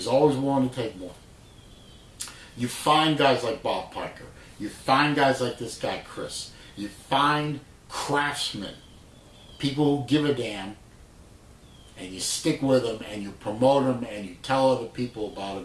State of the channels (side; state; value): both; identical; correlation 1.00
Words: always willing to take more. You find guys like Bob Piker. You find guys like this guy, Chris. You find craftsmen, people who give a damn, and you stick with them and you promote them and you tell other people about